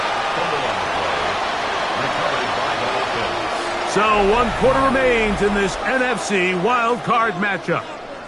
So 1 quarter remains in this NFC wild card matchup.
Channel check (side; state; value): both; identical; correlation 1.00